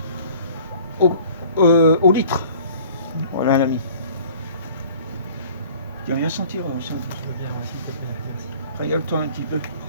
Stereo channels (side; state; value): both; inverted; correlation -0.49